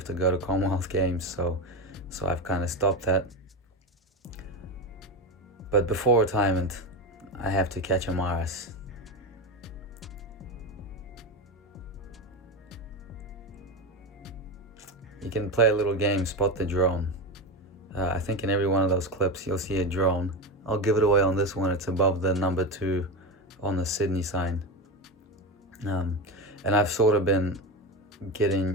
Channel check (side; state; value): both; normal; correlation 0.19